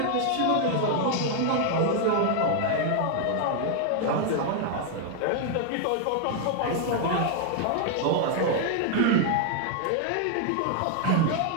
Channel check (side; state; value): both; different; correlation 0.00